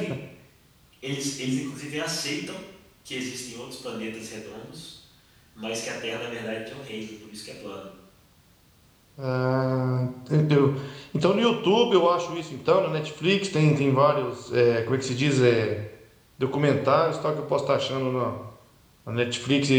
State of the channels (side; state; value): both; identical; correlation 1.00